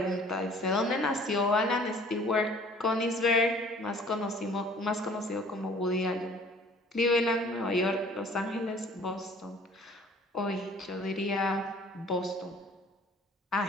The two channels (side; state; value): both; normal; correlation 0.52